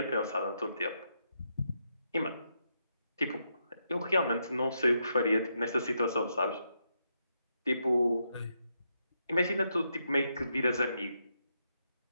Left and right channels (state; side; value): inverted; both; correlation -0.81